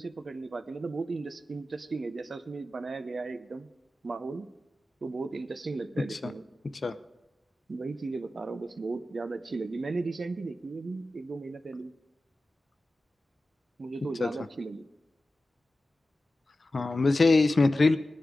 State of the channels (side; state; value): both; normal; correlation 0.94